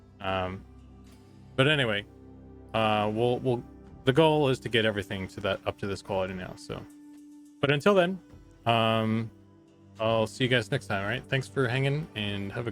but anyway, we'll the goal is to get everything to that up to this quality now. So, but until then, I'll see you guys next time. All right, thanks for hanging, and have a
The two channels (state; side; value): identical; both; correlation 1.00